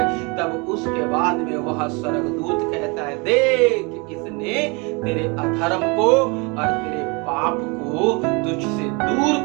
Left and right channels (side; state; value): left; quieter; 29.7 dB